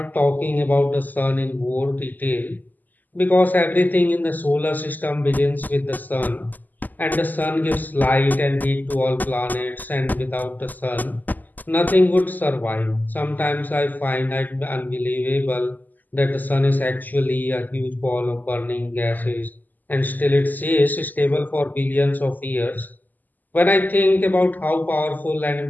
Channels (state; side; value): late; right; 0.084 ms